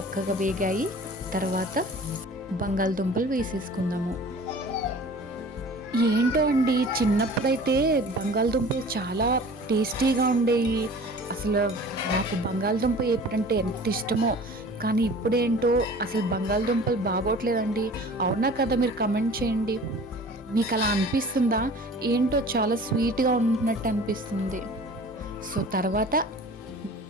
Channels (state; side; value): normal; both; correlation 0.44